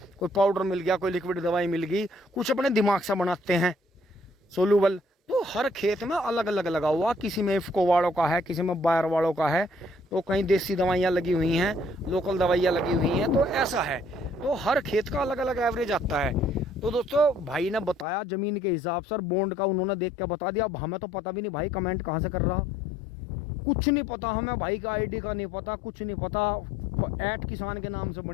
कोई पाउडर मिल गया, कोई लिक्विड दवाई मिल गई, कुछ अपने दिमाग से बनाते हैं सोलूबल। तो हर खेत में अलग अलग लगा हुआ, किसी में इफ्को वालों का है, किसी में बायर वालों का है, तो कहीं देसी दवाइयाँ लगी हुई हैं, लोकल दवाइयाँ लगी हुई हैं। तो ऐसा है, तो हर खेत का अलग अलग एवरेज आता है। तो दोस्तों भाई ने बताया जमीन के हिसाब से, बॉन्ड का उन्होंने देख के बता दिया। अब हमें तो पता भी नहीं भाई कमेंट कहाँ से कर रहा, कुछ नहीं पता हमें, भाई का आईडी का नहीं पता, कुछ नहीं पता। @किसान के नाम से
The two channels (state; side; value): drops out; right; at 18.1 s